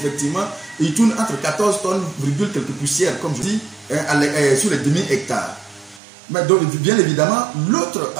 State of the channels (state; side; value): drops out; left; at 6.0 s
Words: et il tourne entre 14 tonnes, quelques poussières, comme je dis, sur les demi-hectares. Mais donc, bien évidemment, l'autre